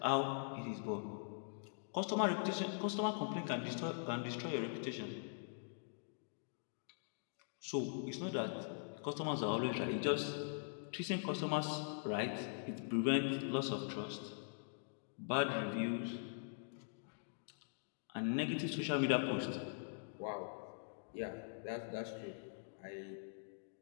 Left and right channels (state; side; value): silent; right; digital silence